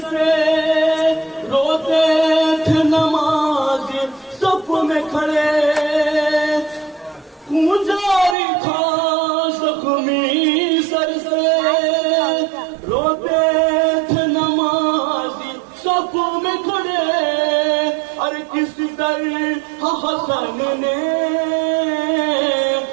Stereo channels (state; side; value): drops out; left; at 8.3 s